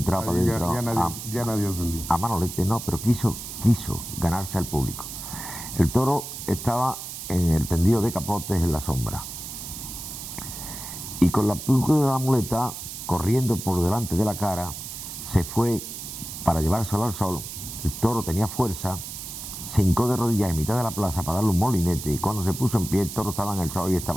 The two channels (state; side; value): noise; right; hiss, 9 dB below the sound